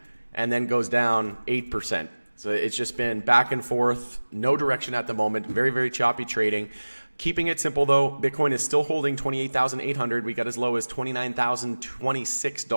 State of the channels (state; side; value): inverted; both; correlation -1.00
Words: and then goes down 8%. So it's just been back and forth, no direction at the moment, very, very choppy trading. Keeping it simple though, Bitcoin is still holding 28,800. We got as low as